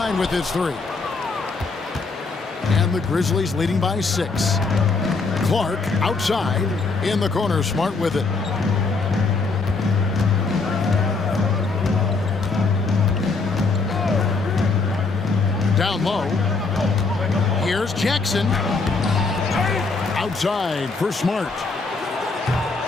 with his 3. the Grizzlies leading by 6. Clark outside in the corner. Smart with it. Down low. Here's Jackson. Outside for Smart.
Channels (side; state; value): right; quieter; 4.1 dB